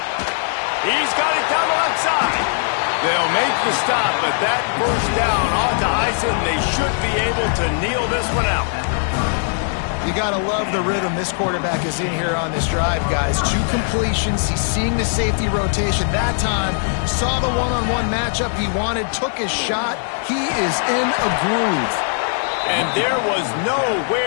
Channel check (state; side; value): silent; right; digital silence